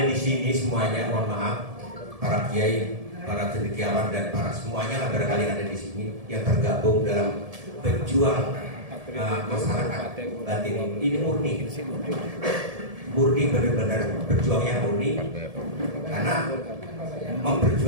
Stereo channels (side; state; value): left; late; 1.7 ms